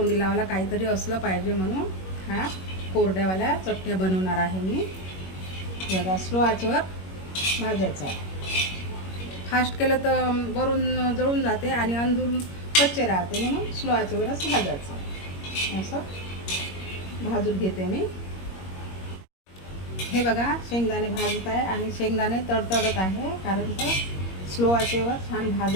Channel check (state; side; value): late; right; 21 ms